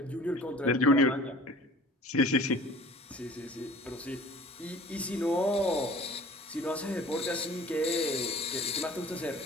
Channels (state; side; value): normal; both; correlation 0.47